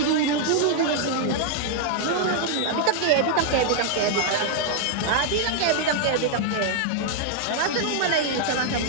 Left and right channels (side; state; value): both; different; correlation 0.00